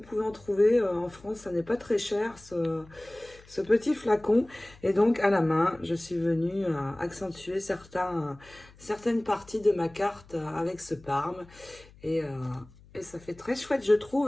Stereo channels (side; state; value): left; noise; hum, 24 dB below the sound